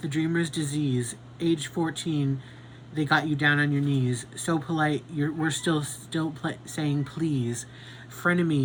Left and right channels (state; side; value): identical; both; correlation 1.00